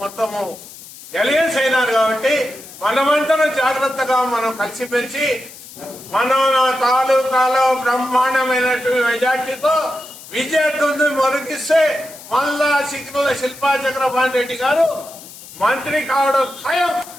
మొత్తము ఎలియన్స్ అయినారు. కాబట్టి మనమంతా జాగ్రత్తగా మనం కలిసిమెలిసి మన తాలూకాలో బ్రహ్మాండమైనటువంటి మెజార్టీతో విజయదుందు మొరకిస్తే మళ్ళా సిగ్నల్ శిల్పా చక్రపాణి రెడ్డి గారు మంత్రి కావడం ఖాయం.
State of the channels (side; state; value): left; noise; hiss, 17 dB below the sound